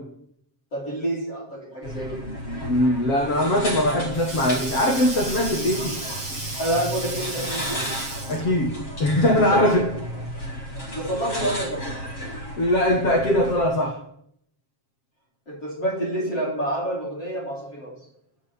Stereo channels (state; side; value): late; right; 7.4 ms